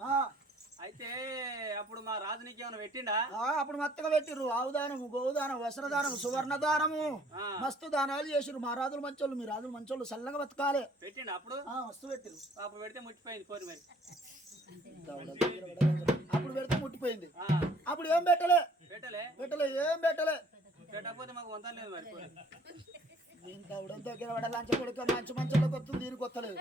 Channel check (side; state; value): both; normal; correlation 0.59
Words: అయితే అప్పుడు మా రాజు నీకు ఏమైనా పెట్టిండా అప్పుడు మత్తగా పెట్టిర్రు ఆవుదానము గోదానం వస్త్రదానం సువర్ణదానము మస్తు దానాలు చేసిరు మా రాజులు మంచోళ్ళు మీ రాజులు మంచోళ్ళు చల్లగా బతకాలి పెట్టిండు అప్పుడు వస్తు పెట్టిరు అప్పుడు పెడితే ముట్టిపోయింది పోరు మరి అప్పుడు పెడితే ముట్టిపోయింది అప్పుడు ఏం పెట్టలే ఏం పెట్టలే పెట్టకపోతే మాకు వంతం లేదు మరి దీనికి అవడం దగ్గర పడ లంచ కొడుకు మంచి మంచోళ్ళకి వస్తుంది దీనికి వస్తలేదు